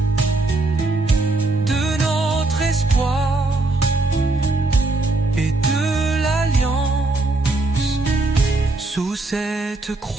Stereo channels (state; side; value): quieter; left; 3.1 dB